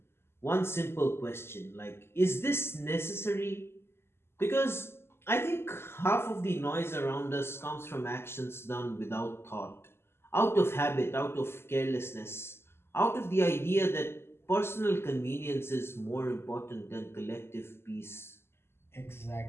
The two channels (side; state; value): right; late; 0.12 ms